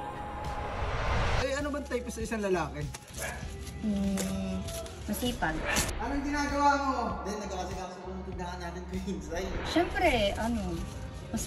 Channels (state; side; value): identical; both; correlation 1.00